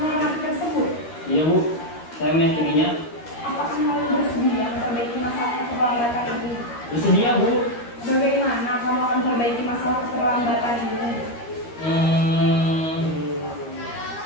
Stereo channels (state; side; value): late; right; 13 ms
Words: tersebut? Iya Bu, saya meyakininya. Apakah Naren bersedia memperbaiki masalah keterlambatan ini? Bersedia Bu. Bagaimana kamu akan memperbaiki masalah keterlambatan ini?